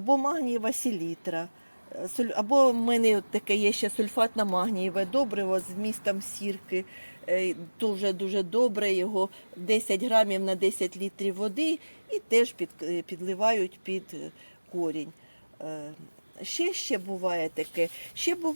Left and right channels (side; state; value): both; inverted; correlation -1.00